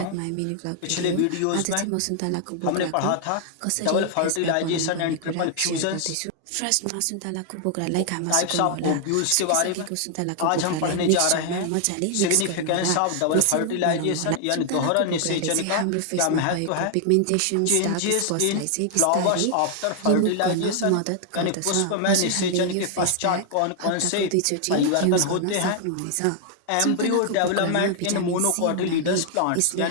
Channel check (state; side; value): different; both; correlation 0.00